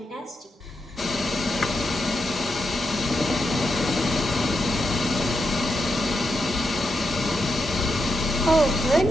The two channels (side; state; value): both; normal; correlation 0.84